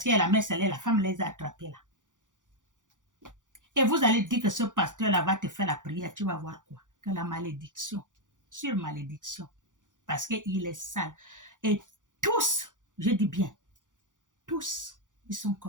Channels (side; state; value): left; late; 0.87 ms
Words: qu'elle a messe, la femme les a attrapés là. Et vous allez dire que ce pasteur-là va te faire la prière, tu vas voir quoi? Que la malédiction, sur malédiction, parce qu'il est sale. Et tous, je dis bien, tous, ils sont